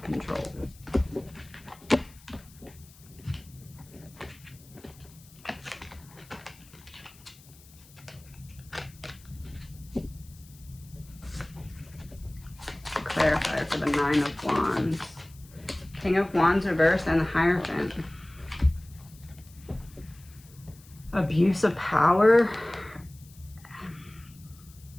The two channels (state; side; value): noise; left; hiss, 24 dB below the sound